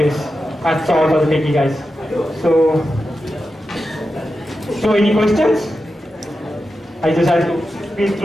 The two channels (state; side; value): normal; both; correlation 0.90